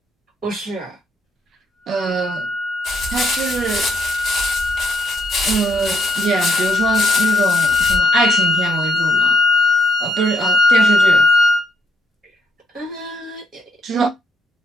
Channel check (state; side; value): normal; both; correlation 0.74